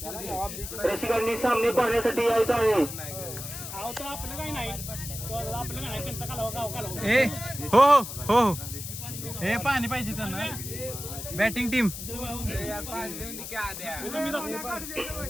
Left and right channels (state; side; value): noise; left; hiss, 8 dB below the sound